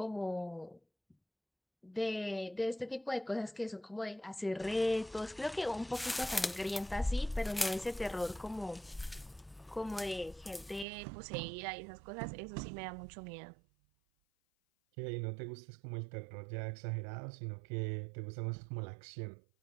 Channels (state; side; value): drops out; left; at 10.9 s